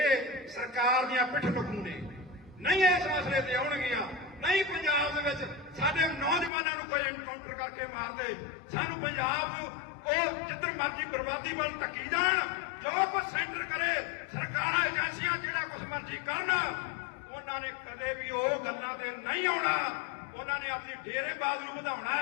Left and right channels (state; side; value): drops out; right; at 6.5 s